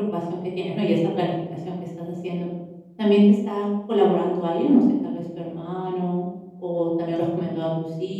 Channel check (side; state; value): both; identical; correlation 1.00